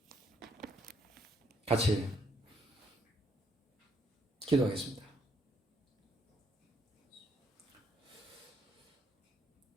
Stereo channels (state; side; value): normal; both; correlation 0.71